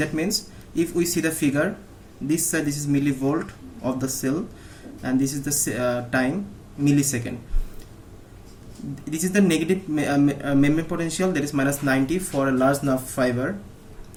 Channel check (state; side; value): identical; both; correlation 1.00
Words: means if we see the figure, this side this is millivolt of the cell, and this is the time millisecond. This is the negative membrane potential, that is minus 90 for a large nerve fiber.